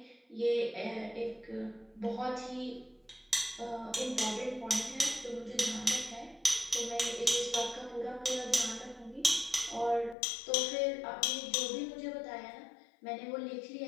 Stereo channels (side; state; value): right; drops out; at 10.2 s